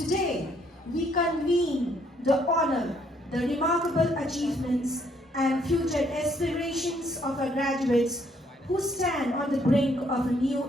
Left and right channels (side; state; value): both; normal; correlation 0.68